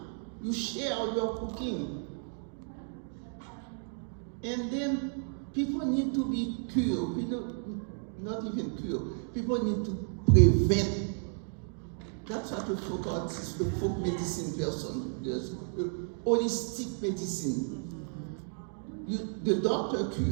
You share your cooking. And then people need to be cured. Not even cured. People need to prevent. That's what a folk artist, a folk medicine person does. Holistic medicine. The doctor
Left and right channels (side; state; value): left; silent; 56 dB below the other